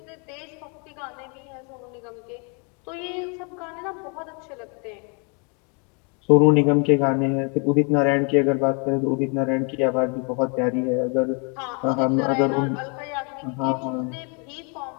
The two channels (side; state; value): right; quieter; 35.3 dB